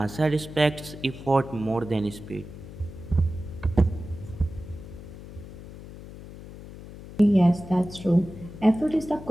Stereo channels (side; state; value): left; noise; hum, 14 dB below the sound